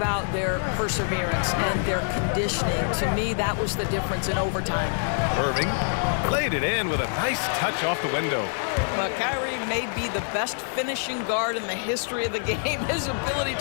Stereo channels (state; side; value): silent; right; 61 dB below the other